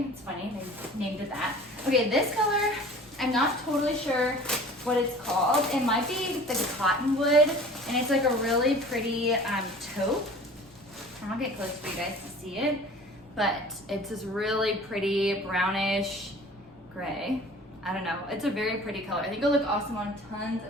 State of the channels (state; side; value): noise; left; rumble, 29 dB below the sound